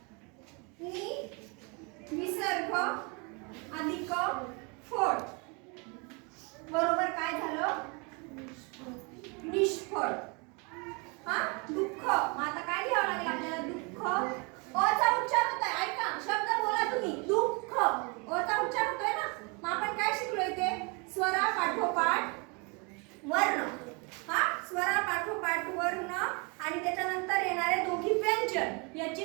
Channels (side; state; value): left; quieter; 31.7 dB